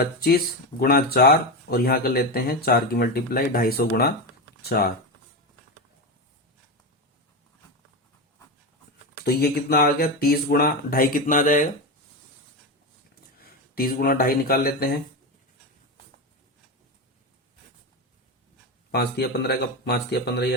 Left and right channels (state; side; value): normal; both; correlation 0.16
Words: गुणा 4, और यहां कर लेते हैं 4 की मल्टीप्लाई 250 गुणा 4। तो ये कितना आ गया, 30 गुणा 2.5 कितना आ जाएगा, 30 गुणा 2.5 निकाल लेते हैं, 5 दिया 15 का 5 दिया 15 ही